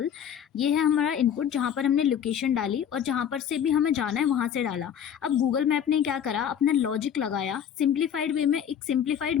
ये है हमारा इनपुट जहाँ पर हमने लोकेशन डाली और जहाँ पर से भी हमें जाना है वहाँ से डाला। अब गूगल मैप ने क्या करा, अपना लॉजिक लगाया, सिंप्लीफाइड वे में एक सिंप्लीफाइड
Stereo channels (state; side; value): quieter; right; 8.8 dB